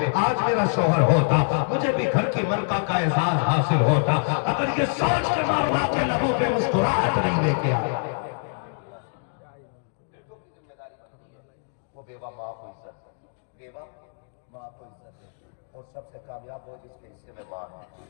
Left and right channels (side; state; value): right; silent; digital silence